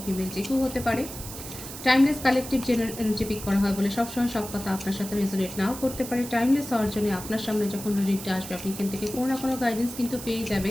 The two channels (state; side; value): noise; right; hiss, 11 dB below the sound